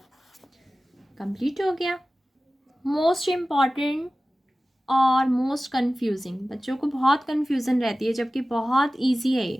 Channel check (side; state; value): both; normal; correlation 0.96